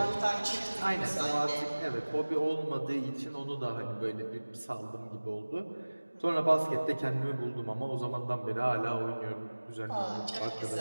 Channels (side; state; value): both; inverted; correlation -1.00